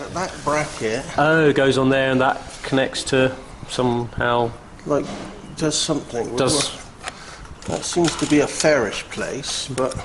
that bracket, Oh, it goes on there and that connects to somehow. like, does something. Does. That seems to be a fairish place, but...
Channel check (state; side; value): identical; both; correlation 1.00